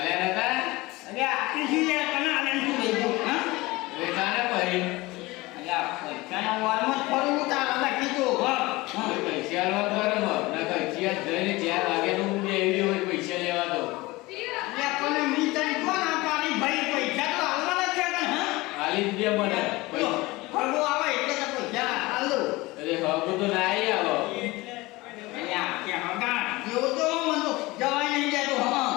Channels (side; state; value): right; quieter; 21.2 dB